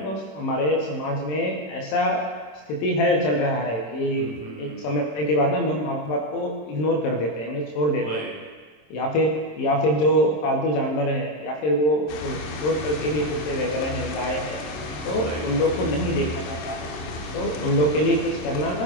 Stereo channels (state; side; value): late; right; 26 ms